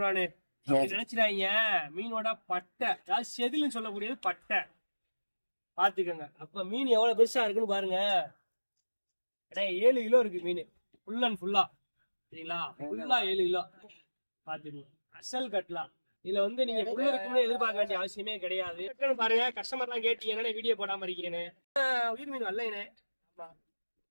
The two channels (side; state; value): both; inverted; correlation -1.00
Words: நினைச்சிடாங்க. மீனோட பட்டை, அதாவது செதில்னு சொல்லக்கூடியது பட்டை பாத்துக்கோங்க. அப்ப மீன் எவ்வளவு பெருசா இருக்குன்னு பாருங்க. 7 கிலோ இருக்கு மீன், ஃபுல் அண்ட் ஃபுல்லா. சரிங்களா? ஃபுல்லா 7 கிலோ பாத்துக்கோங்க. அசல் கட்டலாம். இதுல வந்து நீங்க உள்ள இருக்குன்னு எதிர்பார்க்க வேண்டிய அவசியமே கிடையாது. பாருங்க, கஸ்டமர் எல்லாம் கேட்டீங்கன்னா வீடியோ போடாம இருக்கீங்கன்னு. உயிர் மீன் வரலைனே. ஆமா,